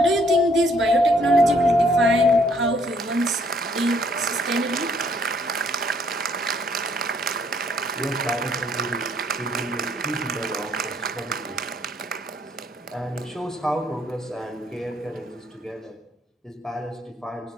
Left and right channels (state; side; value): normal; both; correlation 0.66